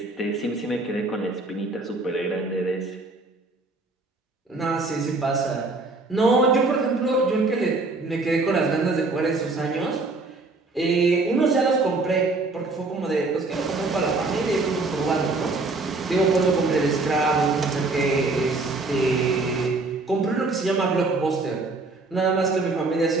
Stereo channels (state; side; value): quieter; left; 3.4 dB